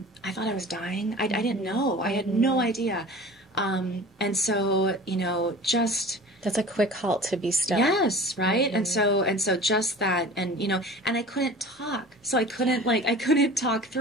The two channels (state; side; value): normal; both; correlation 0.40